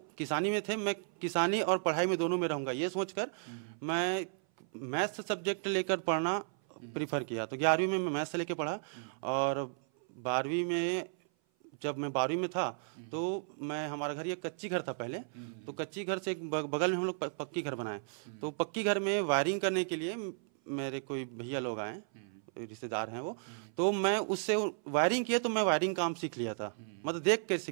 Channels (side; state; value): left; silent; 55 dB below the other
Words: किसानी में थे, मैं किसानी और पढ़ाई में दोनों में रहूंगा, ये सोचकर मैं मैथ्स सब्जेक्ट लेकर पढ़ना प्रीफर किया। तो 11वीं में मैं मैथ्स लेके पढ़ा और 12वीं में, जब मैं 12वीं में था तो मैं, हमारा घर, ये कच्ची घर था पहले, तो कच्ची घर से एक बगल में हम लोग पक्की घर बनाए। तो पक्की घर में वायरिंग करने के लिए मेरे कोई भैया लोग आए, रिश्तेदार हैं वो, तो मैं उससे वायरिंग किया, तो मैं वायरिंग काम सीख लिया था, मतलब देख के